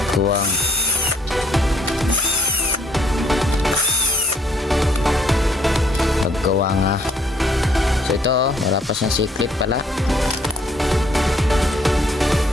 Kuwang paggawa nga. So ito wala pa siyang C-clip pala.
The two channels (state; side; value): normal; both; correlation 0.64